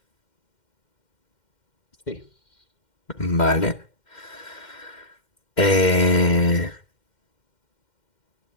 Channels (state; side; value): late; right; 2.1 ms